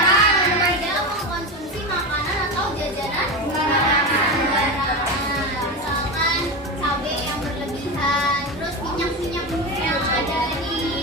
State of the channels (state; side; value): normal; both; correlation 0.20